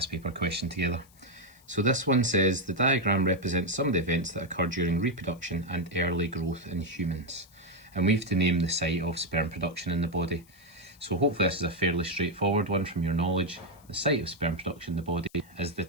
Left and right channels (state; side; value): noise; left; hiss, 28 dB below the sound